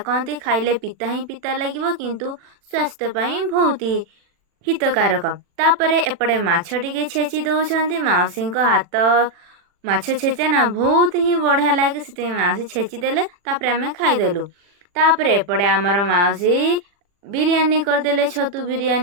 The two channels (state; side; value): late; left; 40 ms